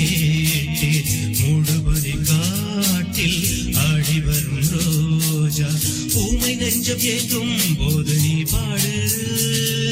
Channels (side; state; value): both; identical; correlation 1.00